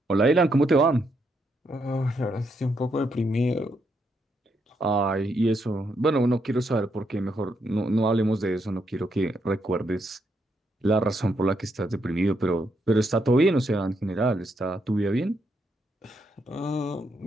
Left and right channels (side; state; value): both; normal; correlation 0.78